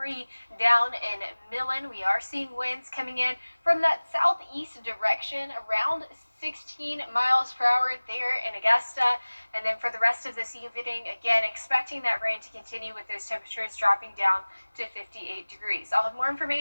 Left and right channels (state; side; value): inverted; both; correlation -1.00